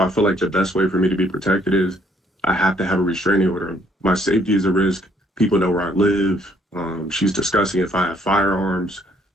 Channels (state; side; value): normal; both; correlation 0.65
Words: I feel like the best way for me to be protected is I have to have a restraining order. My safety is a risk. People know where I live. She's discussing if I have firearms.